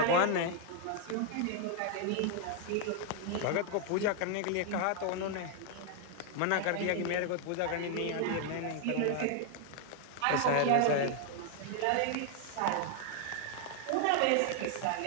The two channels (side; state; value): both; different; correlation 0.00